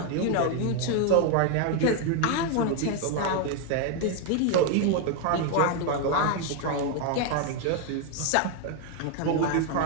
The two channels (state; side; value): different; both; correlation 0.01